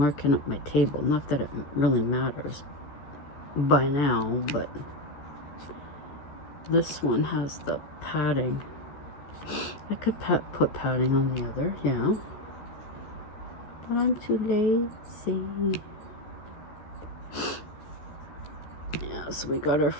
up my table. Not that it really matters by now, but this one has the padding. I could put padding on the other, yeah. But I'm too lazy. Yeah, so we got our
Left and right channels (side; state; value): right; late; 13 ms